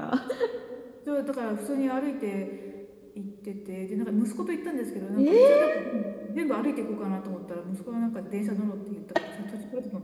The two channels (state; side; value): identical; both; correlation 1.00